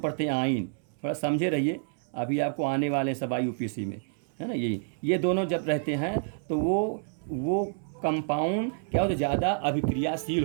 हैं आइन। थोड़ा समझे रहिए, अभी आपको आने वाले हैं सब IUPAC में, है ना। ये दोनों जब रहते हैं तो वो कंपाउंड क्या होता है, ज़्यादा अभिक्रियाशील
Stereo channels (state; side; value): silent; left; 59 dB below the other